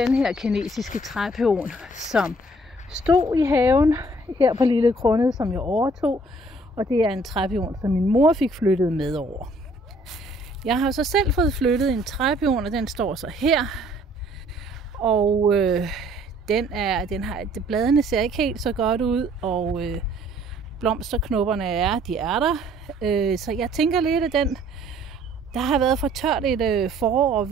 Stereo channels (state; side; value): normal; both; correlation 0.60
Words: den her kinesiske træpion, som stod i haven her på Lille Krunnet, som jeg overtog. Og det er en træpion, som min mor fik flyttet med over. Jeg har så selv fået flyttet en træpion, og den står så her. Og bladene ser ikke helt så godt ud, og blomsterknopperne er der. Så jeg tænker lidt, at der har været for tørt et forår og